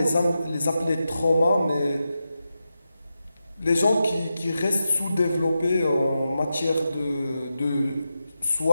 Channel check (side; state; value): both; inverted; correlation -0.90